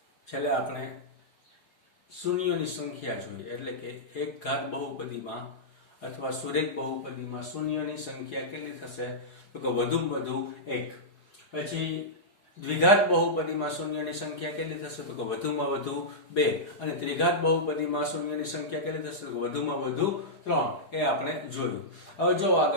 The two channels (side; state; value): right; late; 4.8 ms